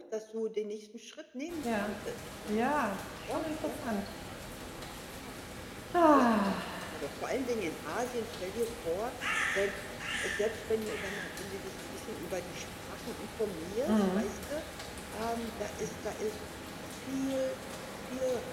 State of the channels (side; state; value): both; identical; correlation 1.00